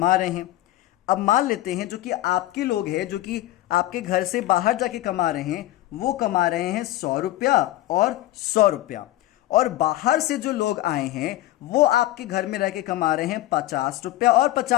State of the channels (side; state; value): right; quieter; 15.6 dB